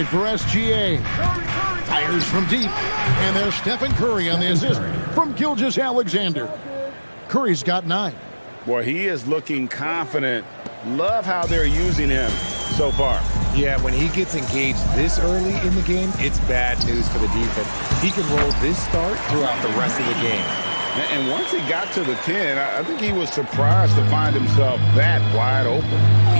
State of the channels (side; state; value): both; inverted; correlation -1.00